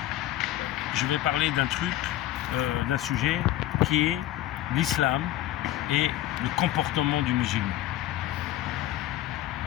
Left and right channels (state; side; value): quieter; right; 14.1 dB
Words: Je vais parler d'un truc, d'un sujet qui est l'islam et le comportement du musulman.